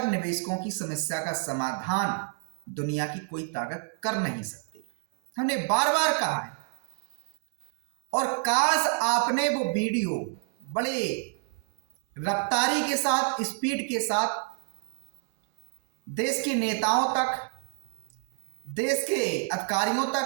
निवेशकों की समस्या का समाधान दुनिया की कोई ताकत कर नहीं सकती। हमने बार बार कहा है, और काश आपने वो वीडियो बड़े रफ्तारी के साथ, स्पीड के साथ देश के नेताओं तक, देश के अधिकारियों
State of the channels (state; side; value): silent; left; 59 dB below the other